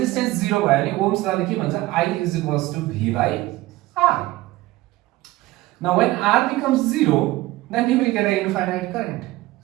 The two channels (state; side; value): quieter; left; 18.2 dB